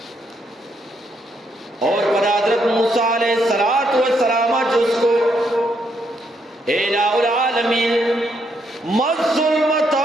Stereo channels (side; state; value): both; normal; correlation 0.75